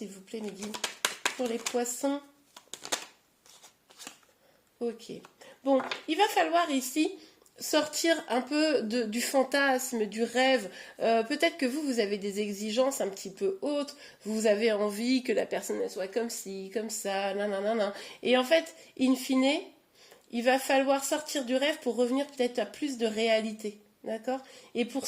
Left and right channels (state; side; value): identical; both; correlation 1.00